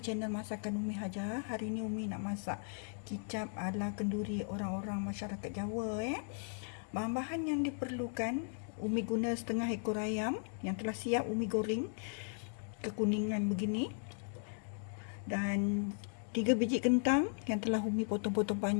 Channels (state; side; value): silent; right; 53 dB below the other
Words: Masakan Umi Haja. Hari ni Umi nak masak kicap ala kenduri orang-orang masyarakat Jawa. Bahan-bahan yang diperlukan, Umi guna setengah ekor ayam yang telah siap Umi goreng kekuningan begini. Dan 3 biji kentang yang telah Umi potong-potong